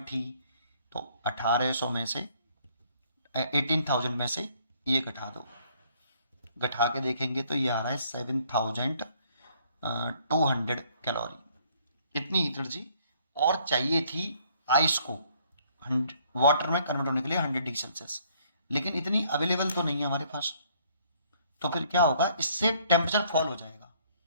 थी। तो 1800 में से 18,000 में से ये घटा दो, घटा के देखेंगे तो ये आ रहा है 7,200 कैलोरी। इतनी एनर्जी और चाहिए थी आइस को वाटर में कन्वर्ट होने के लिए 100 डिग्री सेल्सियस, लेकिन इतनी अवेलेबल तो नहीं है हमारे पास। तो फिर क्या होगा, इससे टेम्परेचर फॉल हो जाएगा,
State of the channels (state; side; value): inverted; both; correlation -0.64